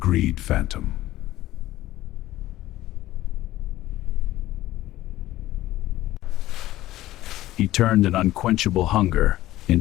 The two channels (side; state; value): right; quieter; 15.5 dB